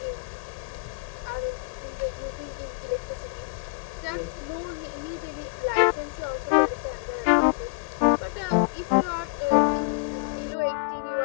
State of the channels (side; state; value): right; quieter; 32.1 dB